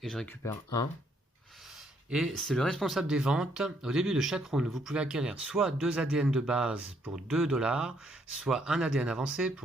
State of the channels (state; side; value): normal; both; correlation 0.70